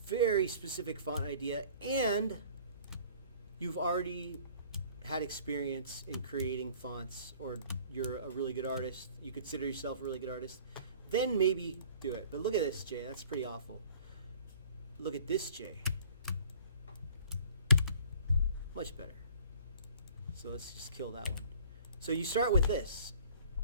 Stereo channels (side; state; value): both; inverted; correlation -0.52